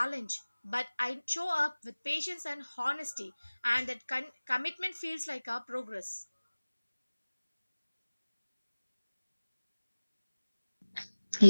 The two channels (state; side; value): inverted; both; correlation -1.00